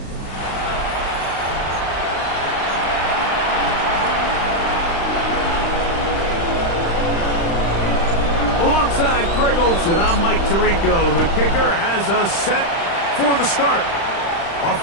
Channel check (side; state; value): right; late; 35 ms